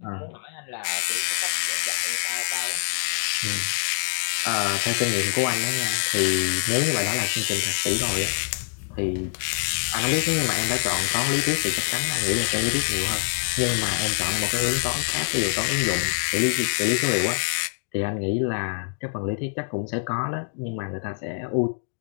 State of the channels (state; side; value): silent; right; digital silence